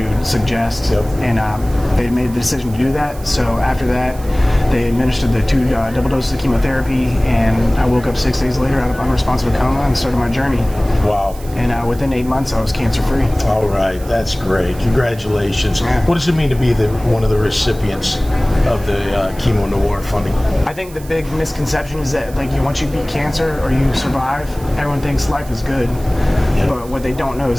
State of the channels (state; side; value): noise; right; hiss, 20 dB below the sound